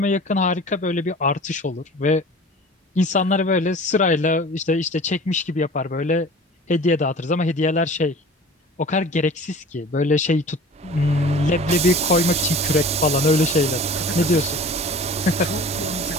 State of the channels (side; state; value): both; normal; correlation 0.42